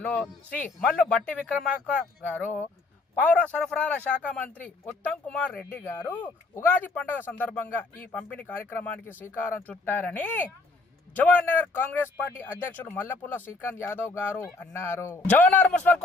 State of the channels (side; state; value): right; quieter; 3.4 dB